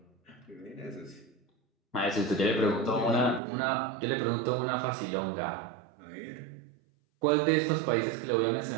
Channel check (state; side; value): drops out; left; at 3.4 s